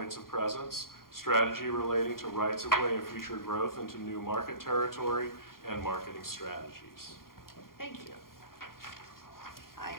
of presence, strategy relating to rights of way and future growth into new market territory, and marketing strategies. Thank you. I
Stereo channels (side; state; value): right; late; 0.92 ms